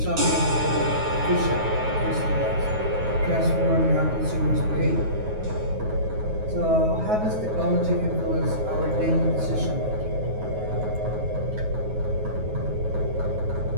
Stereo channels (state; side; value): late; left; 9.4 ms